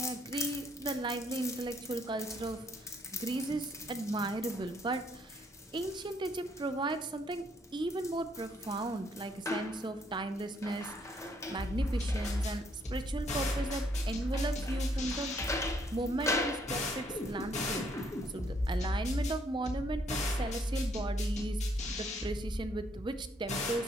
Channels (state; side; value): normal; both; correlation 0.69